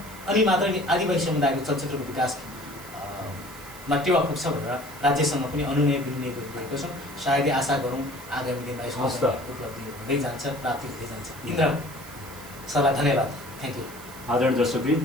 अनि मात्र आदिवासी समुदायको चलचित्रको विकासमा टेवा पुग्छ भनेर राज्यसँग पनि अनुनय विनिमय गरिरहेको छौँ। सायदै आशा गरौँ आगामी दिनमा यसको उपलब्धि हुँदै जान्छ, प्राप्ति हुँदै जान्छ। इन्द्र सरलाई धन्यवाद, थ्याङ्क यू। आदरणीय दर्शकवृन्द,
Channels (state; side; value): noise; right; hiss, 17 dB below the sound